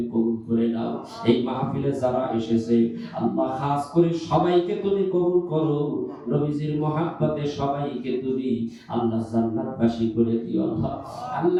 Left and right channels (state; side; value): identical; both; correlation 1.00